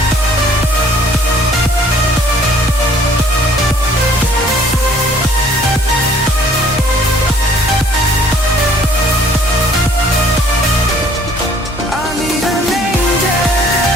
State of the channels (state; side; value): normal; both; correlation 0.58